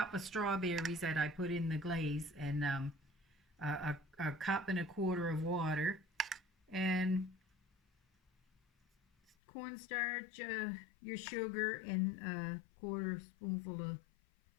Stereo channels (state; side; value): drops out; right; at 9.3 s